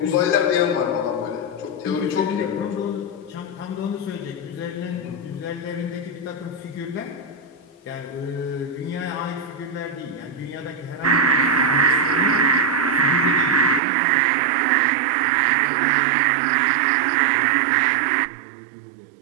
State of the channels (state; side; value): drops out; left; at 13.8 s